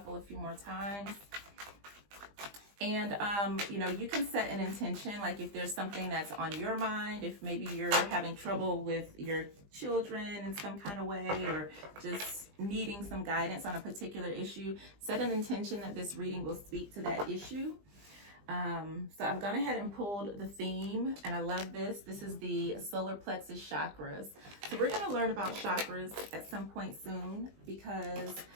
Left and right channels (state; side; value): late; left; 20 ms